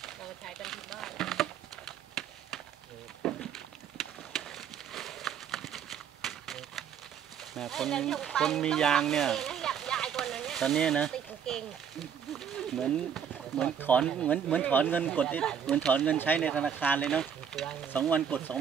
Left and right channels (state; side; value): quieter; left; 8.0 dB